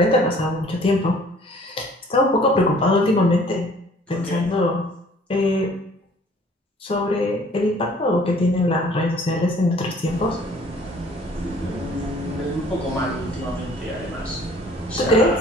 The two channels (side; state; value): both; normal; correlation 0.54